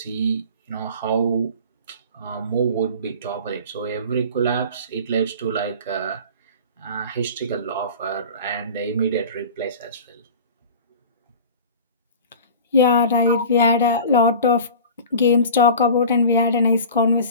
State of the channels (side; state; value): both; inverted; correlation -0.38